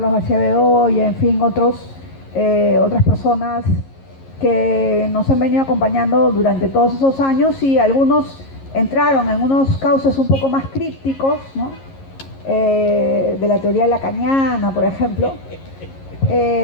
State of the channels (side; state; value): right; late; 11 ms